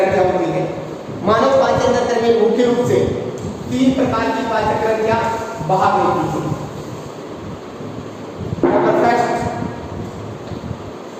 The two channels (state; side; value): identical; both; correlation 1.00